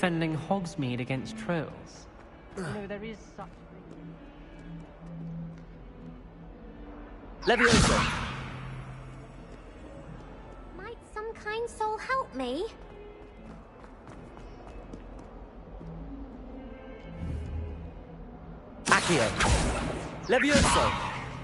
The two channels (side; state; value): both; identical; correlation 1.00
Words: Hogsmeade against trolls. You know, there is such... Leviosa! Might some kind soul help me? Accio! Levioso!